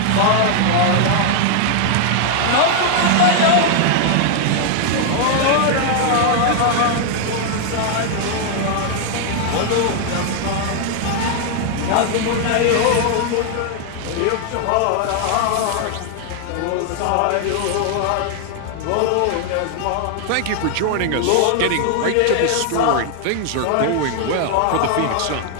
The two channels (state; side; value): different; both; correlation 0.00